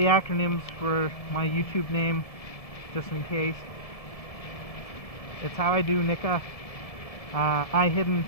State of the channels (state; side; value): late; right; 1.7 ms